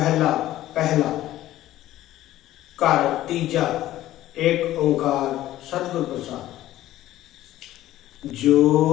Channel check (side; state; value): right; quieter; 14.3 dB